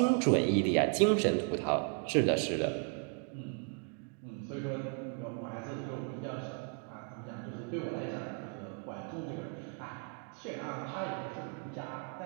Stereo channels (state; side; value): quieter; left; 40.0 dB